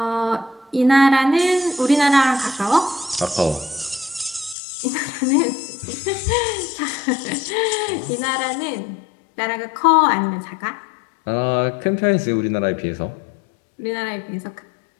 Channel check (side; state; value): right; drops out; at 4.5 s